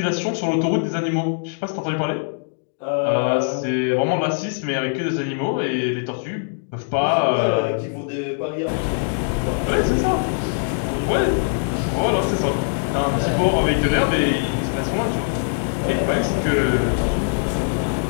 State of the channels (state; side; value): silent; right; digital silence